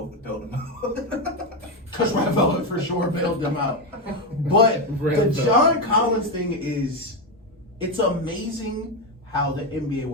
bailed him out. Because Red Velvet for sure bailed them out. But the John Collins thing is, it's amazing how the NBA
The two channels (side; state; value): both; normal; correlation 0.10